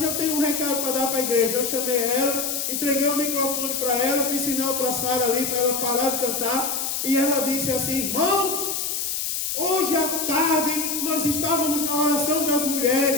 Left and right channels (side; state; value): left; noise; hiss, 2 dB below the sound